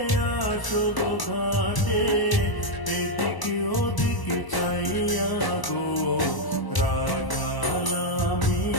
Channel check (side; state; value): right; late; 1.0 ms